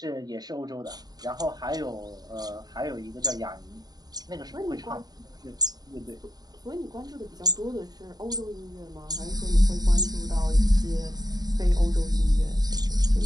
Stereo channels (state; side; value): late; left; 0.19 ms